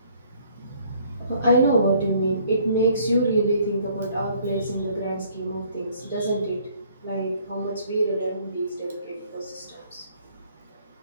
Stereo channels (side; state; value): both; inverted; correlation -0.60